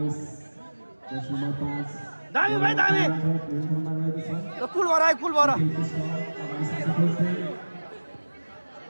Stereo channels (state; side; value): inverted; both; correlation -1.00